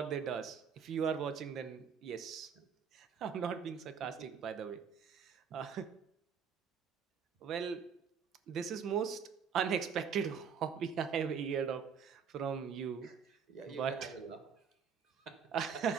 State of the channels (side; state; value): left; quieter; 6.9 dB